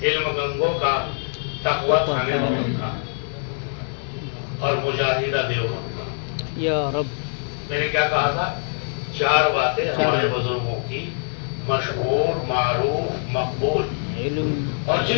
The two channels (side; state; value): right; silent; digital silence